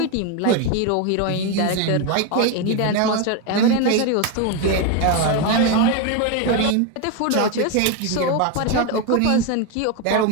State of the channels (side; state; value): both; different; correlation 0.02